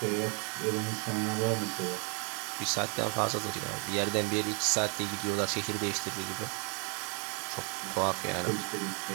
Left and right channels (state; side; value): quieter; left; 36.4 dB